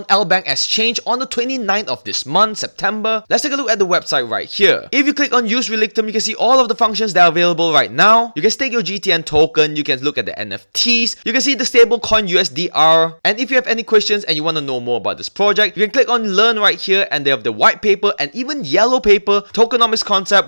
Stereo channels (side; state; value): both; inverted; correlation -1.00